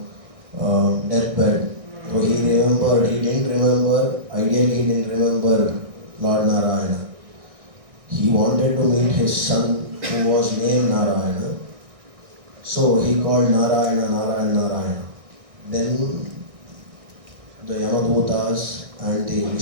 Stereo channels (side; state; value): left; late; 1.6 ms